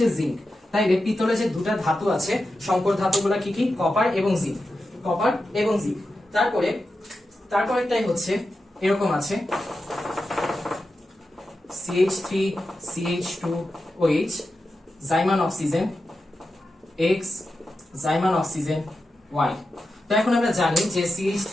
জিঙ্ক। তাই পিতলে যে দুটা ধাতু আছে সংকর ধাতুগুলো কি কি? কপার এবং জিঙ্ক, কপার এবং জিঙ্ক। তারপরেরটাই হচ্ছে এরকম আছে CH3 CH2OH, জাইমান অক্সিজেন X, জাইমান অক্সিজেন Y। তো এখন আমরা জানি যে CH3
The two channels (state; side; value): normal; both; correlation 0.90